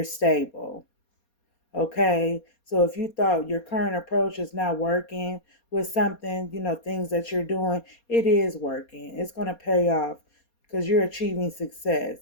stable. Okay, so if you thought your current approach is not working with something, things that you're doing, it is working. It's going to pay off because you're achieving success,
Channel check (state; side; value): late; right; 4.2 ms